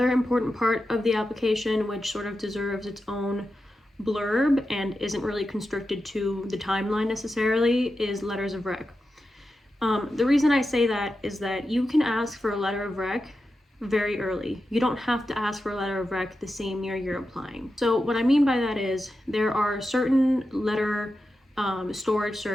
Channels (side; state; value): both; normal; correlation 0.90